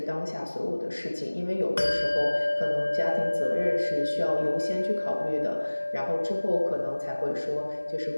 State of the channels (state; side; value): inverted; both; correlation -1.00